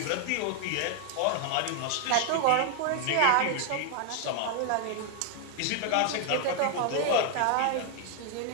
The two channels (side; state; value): both; different; correlation 0.00